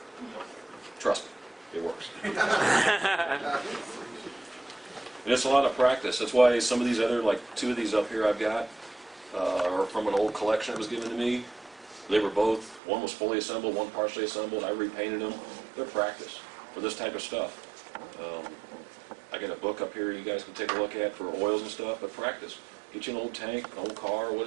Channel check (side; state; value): left; drops out; at 12.8 s